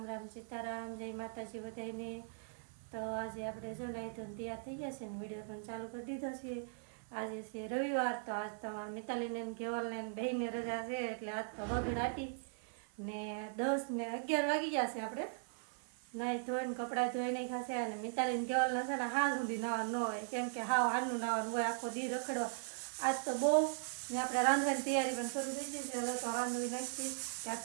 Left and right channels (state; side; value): silent; left; 52 dB below the other